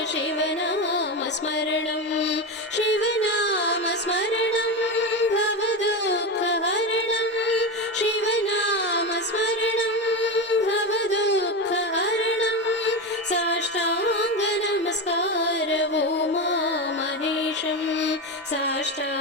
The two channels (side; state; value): both; normal; correlation 0.17